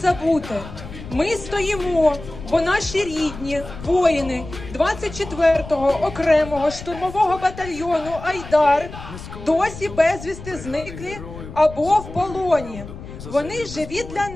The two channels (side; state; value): left; noise; rumble, 13 dB below the sound